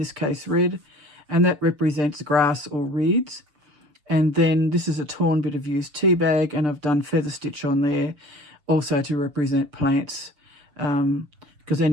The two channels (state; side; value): late; left; 6.8 ms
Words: case red, and that represents grass or reeds. And then this is a torn bit of used tea bag, and I've done feather stitch on there also to represent plants, because